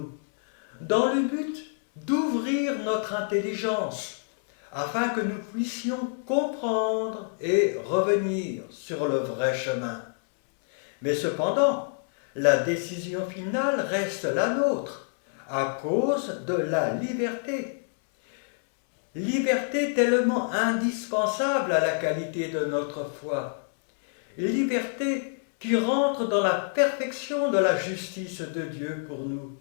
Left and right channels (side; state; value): right; silent; 60 dB below the other